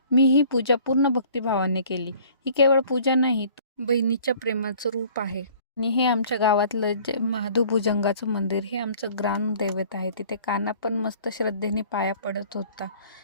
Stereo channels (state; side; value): inverted; both; correlation -0.53